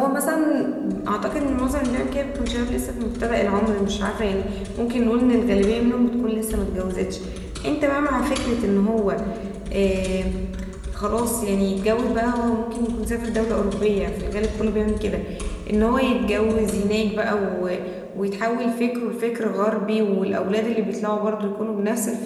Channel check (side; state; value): both; identical; correlation 1.00